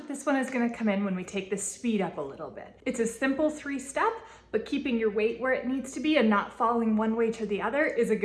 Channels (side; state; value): both; identical; correlation 1.00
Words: this one is going to come in when we take the speed up a little bit. It's a simple 3-step, but keeping your weight where it needs to be and not falling one way to the other is a